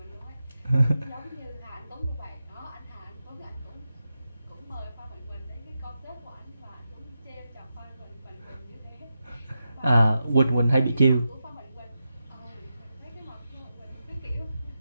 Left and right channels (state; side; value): inverted; both; correlation -0.89